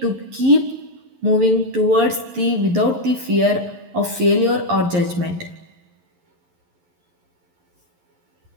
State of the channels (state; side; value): late; left; 11 ms